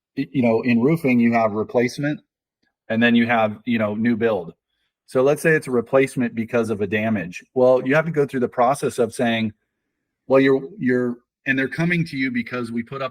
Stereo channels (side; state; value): both; identical; correlation 1.00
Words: in roofing, you have replacement and then you have, new build. So let's say it's a replacement because of a damage. Well, you have to go through the process of saying, well, and they're coming to you because we put